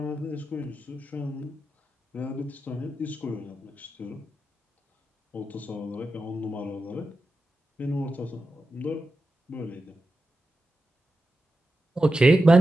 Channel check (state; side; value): normal; both; correlation 0.91